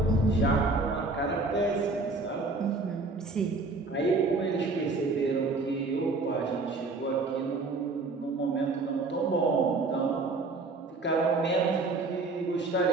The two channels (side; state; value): left; quieter; 3.6 dB